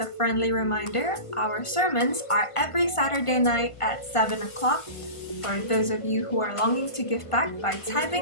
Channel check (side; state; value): right; late; 1.5 ms